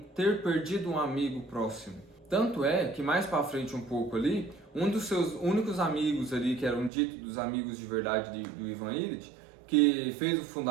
ter perdido um amigo próximo. Tanto é que mais para frente um pouco ali, um dos seus únicos amigos ali, que eram ditos dos amigos de verdade do Ivan Illich, que fez o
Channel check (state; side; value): drops out; left; at 6.9 s